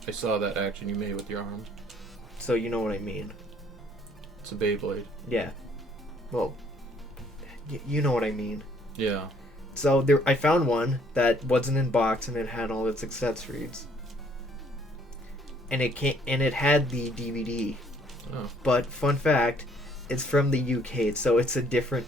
I saw that action you made with your arm. So you know what I mean. It's a Beyblade. Yeah. Well, you know what I mean. Yeah. So I found one that wasn't in box and it had all its accessories. And it had the DVD. Oh. But fun fact, it's from the UK, so it's a different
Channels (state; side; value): normal; both; correlation 0.63